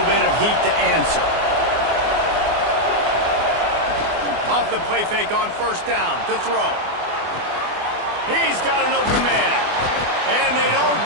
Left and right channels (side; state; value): left; late; 24 ms